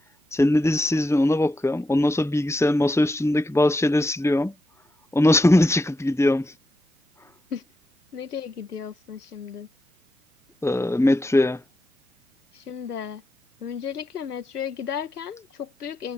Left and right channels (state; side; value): normal; both; correlation 0.85